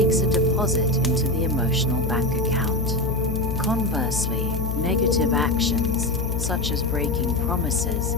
a deposit into the emotional bank account. Conversely, negative actions, such as breaking promises,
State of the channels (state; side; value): noise; left; hum, 1 dB below the sound